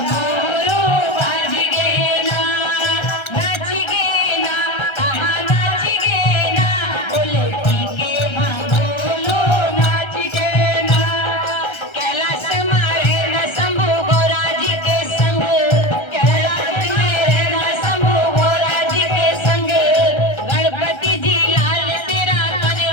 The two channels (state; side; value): late; right; 1.3 ms